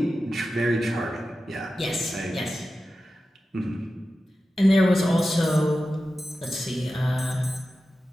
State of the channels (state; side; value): normal; both; correlation 0.93